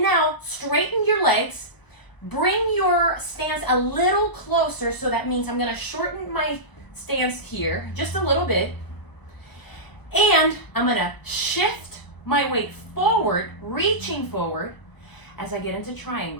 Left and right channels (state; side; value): late; right; 1.0 ms